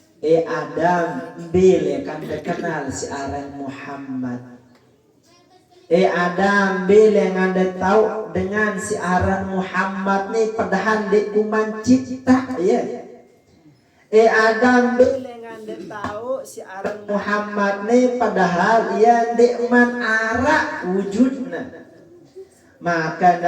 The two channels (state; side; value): identical; both; correlation 1.00